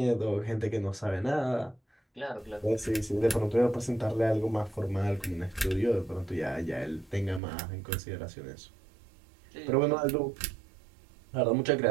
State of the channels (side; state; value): left; drops out; at 7.4 s